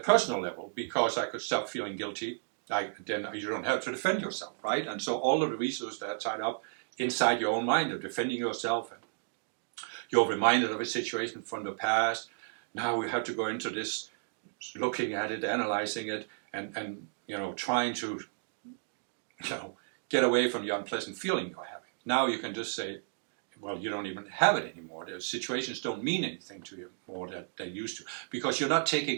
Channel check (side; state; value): left; silent; digital silence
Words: level, because I could stop feeling guilty. Then you don't have to defend yourself, right? And so all of the resources that are tied up inside your own mind of defending yourself, and you're reminded of a situation from the past. Now we have to go into this, looking at it, analyzing it, and trying to get away from the unpleasant feeling you're having. Now you can just say, well, you don't even have it anymore. The situations don't mean anything to you more than they used to, because you're not